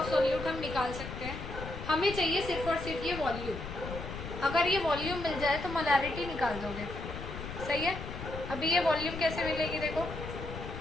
सॉल्यूट हम निकाल सकते हैं। हमें चाहिए सिर्फ और सिर्फ ये वॉल्यूम। अगर ये वॉल्यूम मिल जाए तो मोलारिटी निकाल दोगे। सही है, अभी ये वॉल्यूम कैसे मिलेगी, देखो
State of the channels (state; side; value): noise; left; rumble, 8 dB below the sound